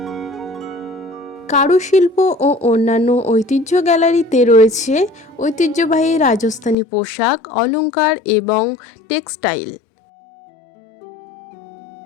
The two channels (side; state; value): right; drops out; at 6.8 s